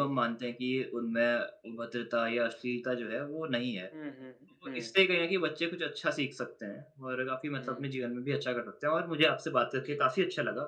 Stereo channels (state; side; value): identical; both; correlation 1.00